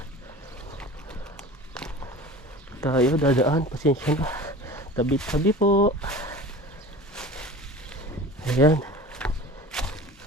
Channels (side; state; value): both; normal; correlation 0.37